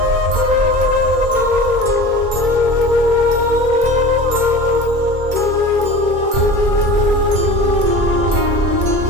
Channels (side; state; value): left; late; 2.3 ms